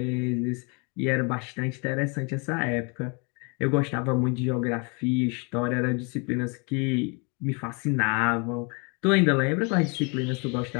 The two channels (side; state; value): right; quieter; 33.2 dB